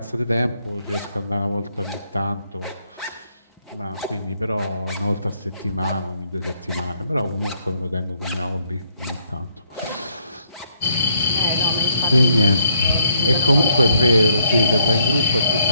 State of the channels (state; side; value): inverted; both; correlation -0.72